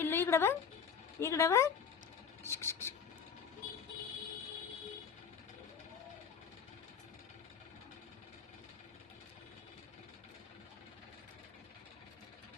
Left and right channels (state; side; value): quieter; right; 7.0 dB